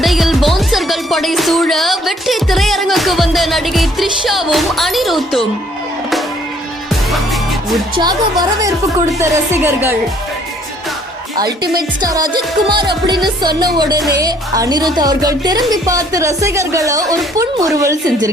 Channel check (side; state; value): both; normal; correlation 0.62